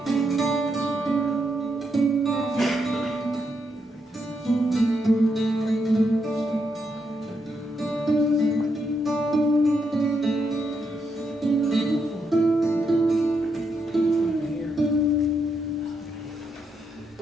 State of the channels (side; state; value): both; normal; correlation 0.80